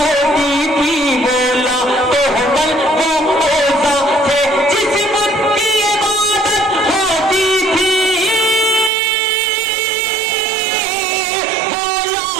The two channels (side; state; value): left; drops out; at 8.9 s